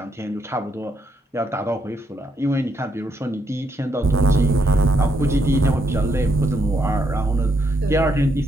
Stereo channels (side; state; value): both; normal; correlation 0.77